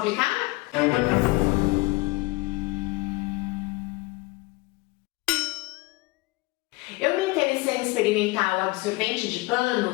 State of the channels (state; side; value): quieter; right; 22.4 dB